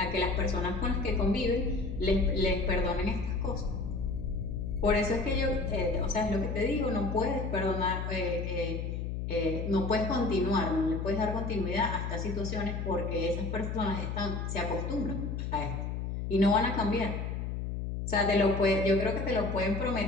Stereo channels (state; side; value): noise; left; hum, 3 dB below the sound